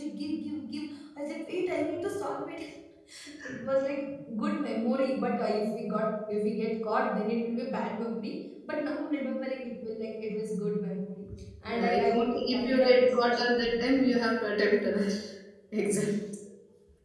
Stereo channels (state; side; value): identical; both; correlation 1.00